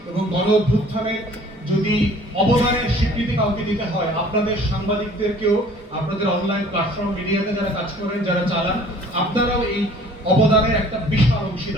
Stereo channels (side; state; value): both; normal; correlation 0.52